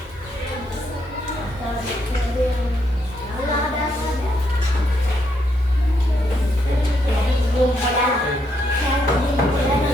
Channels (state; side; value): normal; both; correlation 0.76